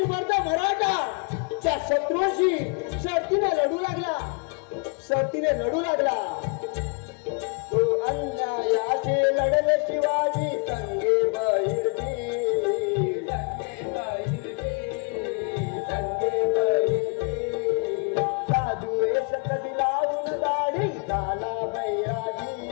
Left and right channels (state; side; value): quieter; right; 34.2 dB